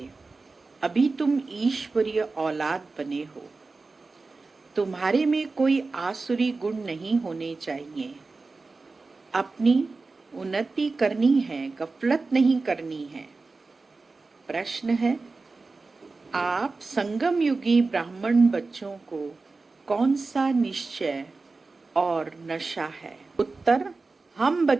अभी तुम ईश्वरीय औलाद बने हो। तुम्हारे में कोई आसुरी गुण नहीं होने चाहिए। अपनी उन्नति करनी है, गफलत नहीं करनी है। प्रश्न है, आप संगम युगी ब्राह्मण बच्चों को कौन सा निश्चय और नशा है? उत्तर, हम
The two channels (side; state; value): left; quieter; 3.8 dB